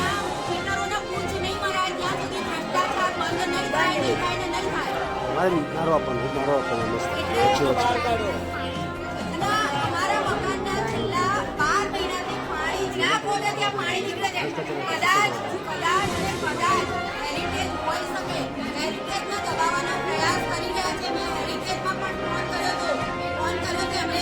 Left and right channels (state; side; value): identical; both; correlation 1.00